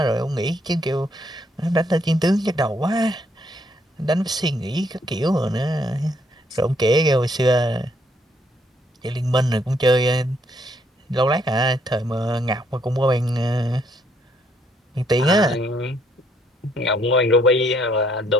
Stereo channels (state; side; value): normal; both; correlation 0.70